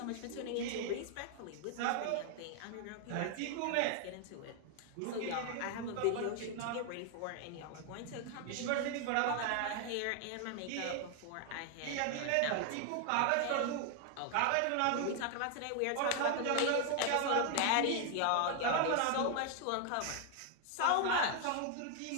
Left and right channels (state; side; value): different; both; correlation 0.00